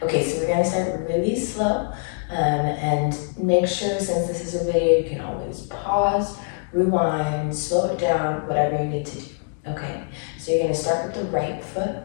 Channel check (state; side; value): silent; right; 63 dB below the other